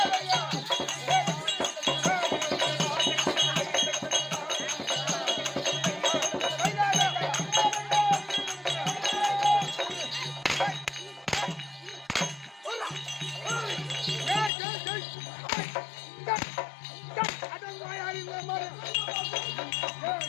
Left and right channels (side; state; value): right; drops out; at 14.5 s